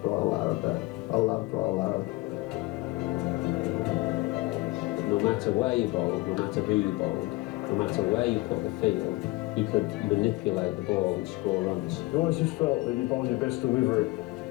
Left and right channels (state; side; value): quieter; right; 21.4 dB